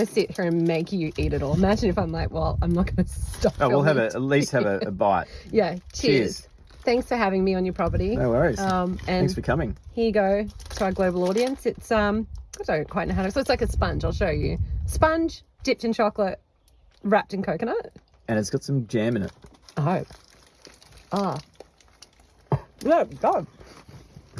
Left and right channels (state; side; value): identical; both; correlation 1.00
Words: sit here and make you eat it all. Imagine if I'm like, well, I'm not going to stop. Oh, we'll at least have a bite. Yeah, cheers. Thanks for having me on your property. No worries. And thanks for coming. Here you go to our global audience. It's I don't quite know how to. So it's like a sponge. I'll show you. Sponge dipped in chocolate, wrapped in coconut. And it's got some jam in it. Oh. Yeah, God.